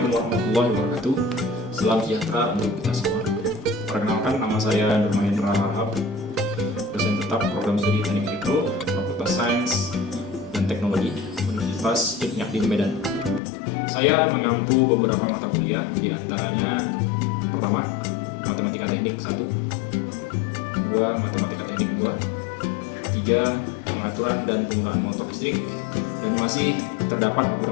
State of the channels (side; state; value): right; drops out; at 13.4 s